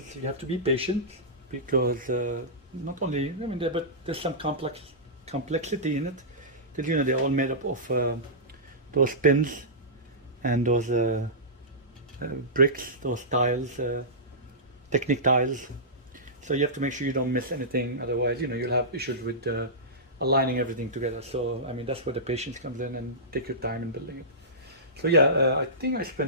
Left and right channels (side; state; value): both; normal; correlation -0.17